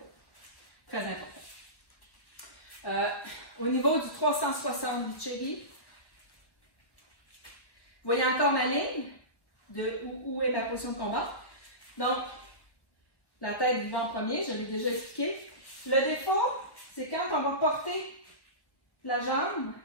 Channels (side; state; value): right; late; 1.1 ms